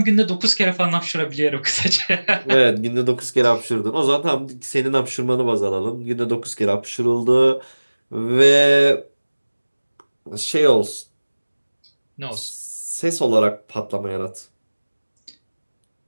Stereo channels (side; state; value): both; inverted; correlation -1.00